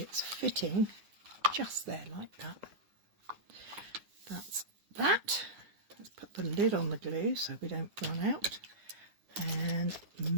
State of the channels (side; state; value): left; late; 9.4 ms